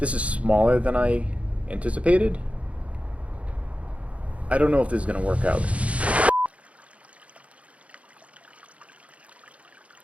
is smaller than I anticipated. I don't know if this is going to work out.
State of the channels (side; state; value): left; late; 0.064 ms